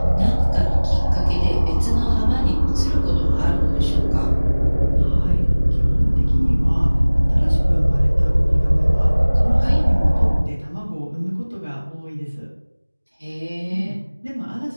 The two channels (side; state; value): both; inverted; correlation -1.00